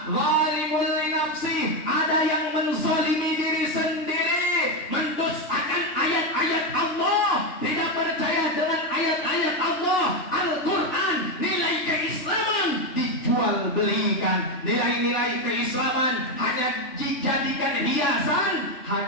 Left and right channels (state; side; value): late; right; 3.6 ms